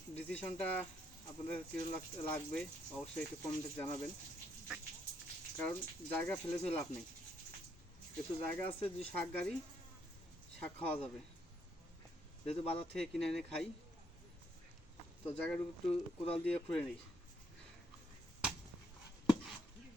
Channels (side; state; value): both; normal; correlation 0.73